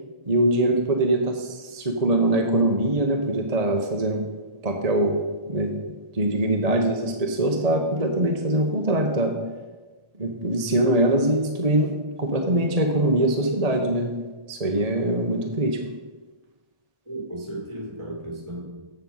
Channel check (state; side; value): late; left; 1.7 ms